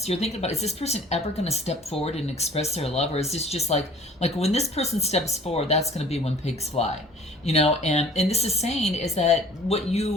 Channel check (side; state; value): both; normal; correlation 0.50